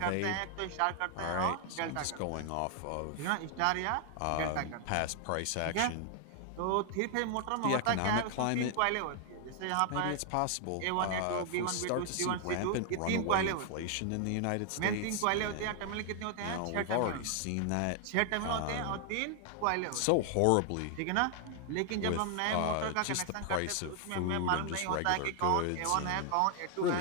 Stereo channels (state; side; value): different; both; correlation 0.00